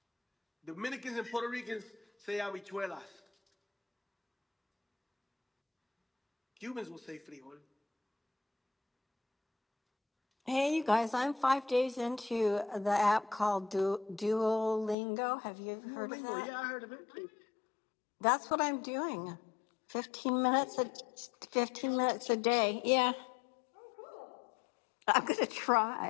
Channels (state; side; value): drops out; right; at 15.0 s